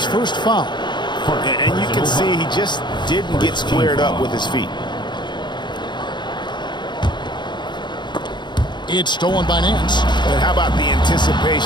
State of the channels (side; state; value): right; late; 0.22 ms